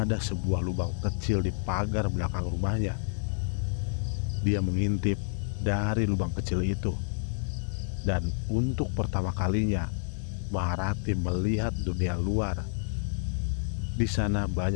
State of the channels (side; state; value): right; silent; digital silence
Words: sebuah lubang kecil di pagar belakang rumahnya. Dia mengintip dari lubang kecil itu, dan untuk pertama kalinya Maharati melihat dunia luar. Di sana